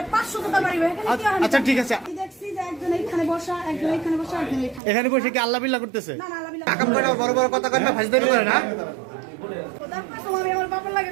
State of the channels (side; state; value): left; drops out; at 4.8 s